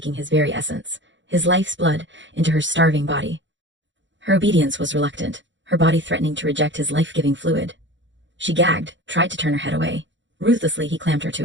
his very essence, his life's blood, into her starving body. Her obedience was reluctant, her body threatening to reject his life-giving fluid. She gagged, tried to turn her head away. Ruthlessly he clamped her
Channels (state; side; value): late; left; 0.54 ms